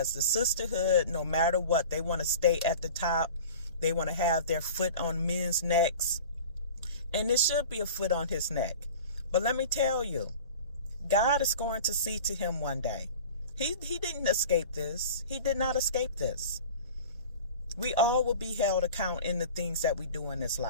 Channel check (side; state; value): both; inverted; correlation -0.39